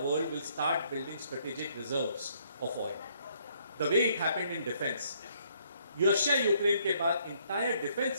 will start building strategic reserves of oil. The way it happened in defense. Russia-Ukraine के बाद entire defense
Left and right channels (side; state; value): both; inverted; correlation -0.67